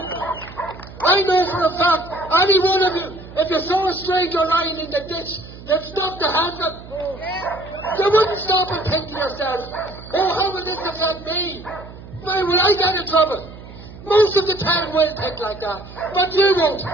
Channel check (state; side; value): noise; right; hum, 16 dB below the sound